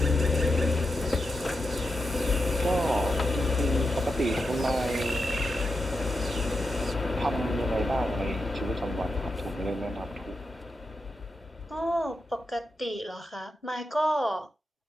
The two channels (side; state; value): both; normal; correlation 0.87